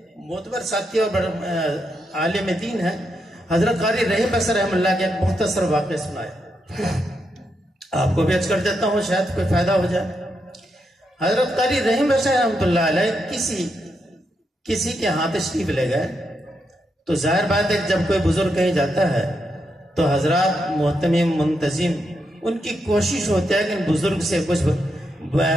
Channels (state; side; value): normal; both; correlation 0.82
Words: معتبر ساتھی اور عالم دین ہے، حضرت قاری رحیم بصری رحم اللہ کے ایک مختصر واقعہ سنایا. آپ کو بھی عرض کر دیتا ہوں شاید کوئی فائدہ ہو جائے. حضرت قاری رحیم بصری رحمۃ اللہ علیہ کسی کے ہاں تشریف لے گئے تو ظاہر بات ہے جب کوئی بزرگ کہیں جاتا ہے تو حضرات محتمم منتظم ان کی کوشش ہوتی ہے کہ ان بزرگ سے کچھ